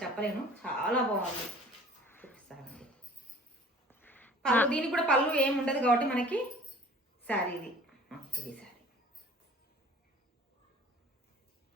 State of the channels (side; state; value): both; normal; correlation 0.48